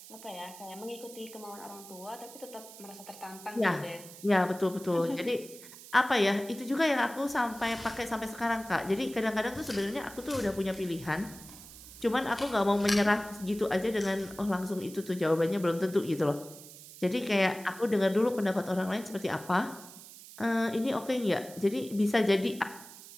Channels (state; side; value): noise; right; hiss, 17 dB below the sound